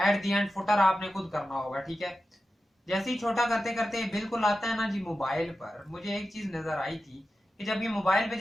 दी एंड फुटर आपने खुद करना होगा, ठीक है। जैसे ही छोटा करते करते बिल्कुल आता है ना जी मोबाइल पर, मुझे एक चीज नजर आई थी कि जब ये मोबाइल पे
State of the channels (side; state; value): both; normal; correlation 0.92